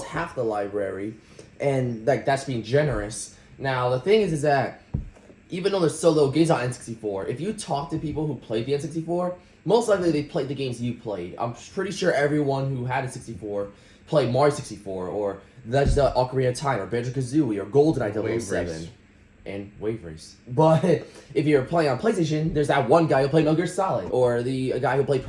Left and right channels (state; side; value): identical; both; correlation 1.00